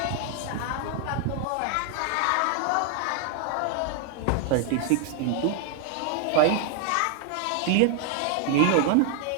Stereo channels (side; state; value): both; different; correlation 0.00